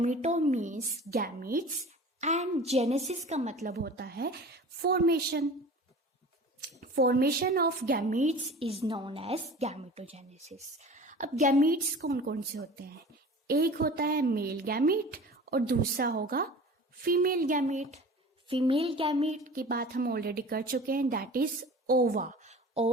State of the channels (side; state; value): both; normal; correlation 0.40